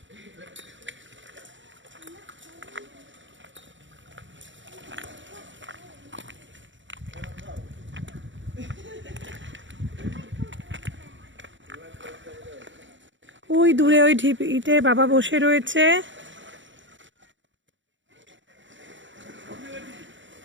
ওই দূরে ওই ঢিপিতে বাবা বসে রয়েছে।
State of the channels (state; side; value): late; left; 0.55 ms